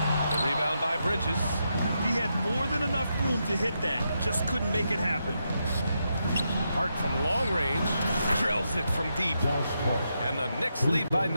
The rebound by Bridges. He had more than enough room to hit that, just couldn't make it happen. Hart from long range drills it from deep. And the Knicks lead by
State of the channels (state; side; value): inverted; both; correlation -0.83